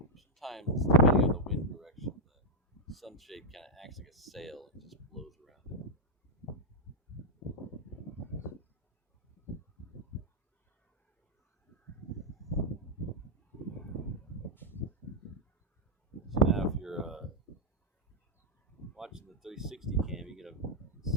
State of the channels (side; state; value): both; normal; correlation 0.01